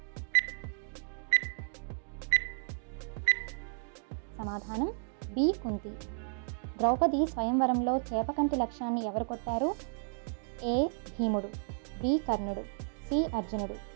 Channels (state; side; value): silent; left; digital silence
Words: సమాధానం బి కుంతి. ద్రౌపది స్వయంవరంలో చేపకంటి లక్ష్యాన్ని ఎవరు కొట్టారు? ఏ భీముడు, బి కర్ణుడు, సి అర్జునుడు,